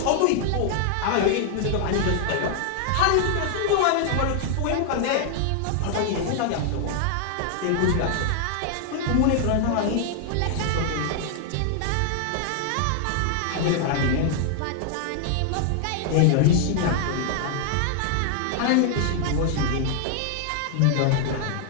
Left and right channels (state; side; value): different; both; correlation 0.00